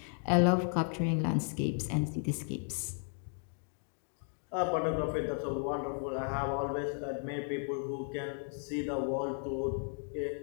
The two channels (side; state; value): right; silent; 55 dB below the other